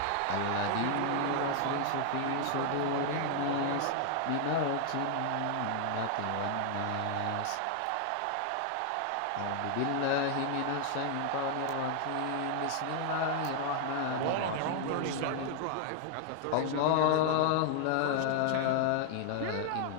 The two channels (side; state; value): both; different; correlation 0.00